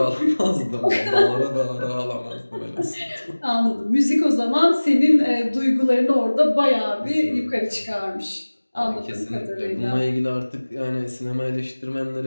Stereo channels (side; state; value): both; inverted; correlation -1.00